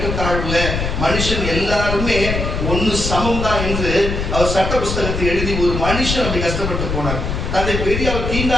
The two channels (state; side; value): noise; left; rumble, 2 dB below the sound